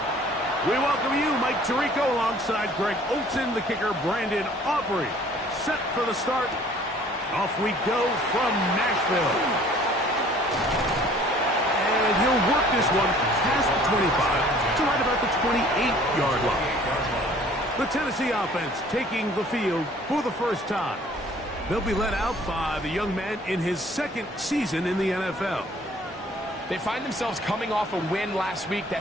We welcome you, Mike Tirico, alongside Greg Olson, the kicker, Brandon Aubrey. Set for the start. Off we go from Nashville. And he'll work this one past the 25 to right about the 28-yard line. The Tennessee offense taking the field for the first time. They'll be led out by the young man in his second season in the NFL. They find themselves coming off a win last week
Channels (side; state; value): both; normal; correlation 0.54